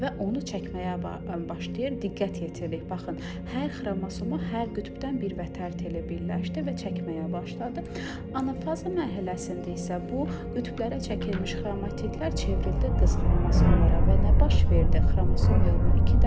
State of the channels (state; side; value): identical; both; correlation 1.00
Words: onu çəkməyə başlayır. Diqqət yetirir. Baxın, hər xromosoma hər qütbdən bir vətər teli birləşdi və çəkməyə başladı. Anafaza mərhələsində isə bu qütblərə çəkilmiş xromatidlər çevrildi qız xromosomlara və nə baş verdi? Xromosom yığımı 2